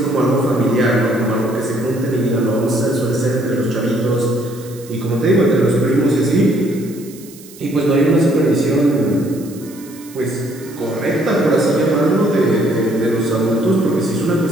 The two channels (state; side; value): noise; right; hiss, 20 dB below the sound